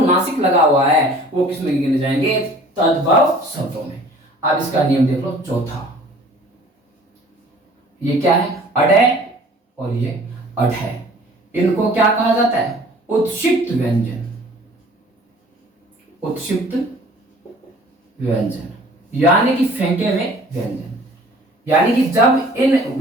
लगा हुआ है वो किसमें गिने जाएंगे? तद्भव शब्दों में। अब इसका नियम देख लो चौथा। ये क्या है? अड है और ये अड है। इनको क्या कहा जाता है? उत्क्षिप्त व्यंजन। उत्क्षिप्त व्यंजन यानी कि फेंके हुए व्यंजन। यानी कि जब इन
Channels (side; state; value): both; normal; correlation 0.50